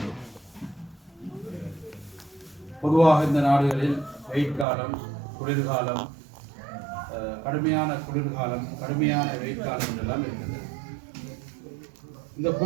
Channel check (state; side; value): drops out; left; at 4.7 s